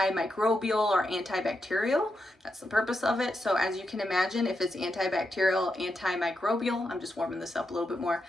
or antibacterial. That's the purpose of it. So as you can imagine, if it's antibacterial, antimicrobial, I'm just warming this up a little bit more.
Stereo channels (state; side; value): normal; both; correlation 0.85